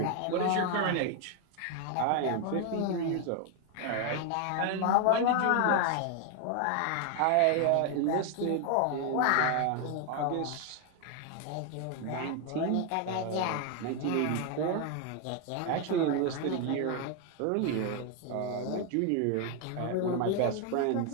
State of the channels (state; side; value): different; both; correlation 0.01